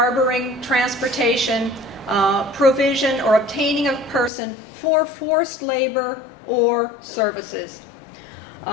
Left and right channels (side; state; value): right; drops out; at 4.3 s